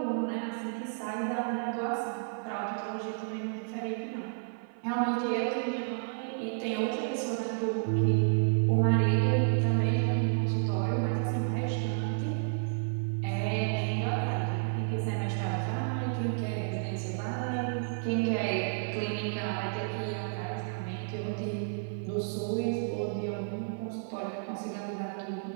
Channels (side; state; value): left; silent; 56 dB below the other